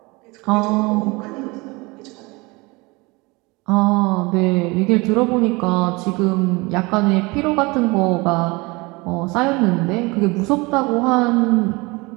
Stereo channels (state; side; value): quieter; left; 25.0 dB